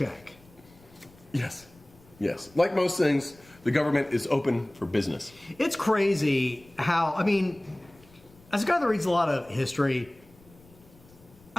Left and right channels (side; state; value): left; noise; rumble, 27 dB below the sound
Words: Yes. Like most things, the government is open for business. It's crazy how, I mean, as a guy that reads a lot of history,